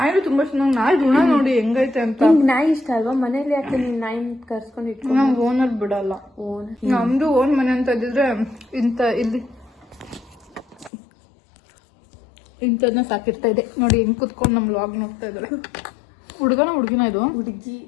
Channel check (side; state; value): right; drops out; at 10.9 s